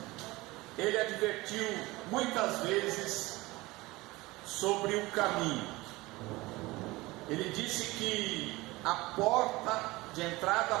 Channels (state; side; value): quieter; left; 20.9 dB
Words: Ele advertiu muitas vezes sobre o caminho. Ele disse que a porta de entrada